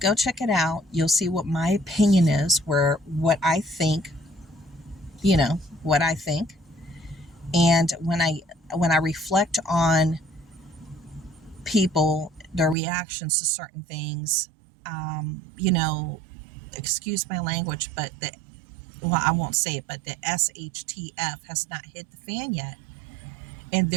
check it out. You'll see what my opinion is, what I think, what I think. And when I reflect on people, their reactions to certain things, excuse my language, but I won't say it, but the SHTF has not hit the fan yet. And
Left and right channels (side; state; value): left; drops out; at 12.8 s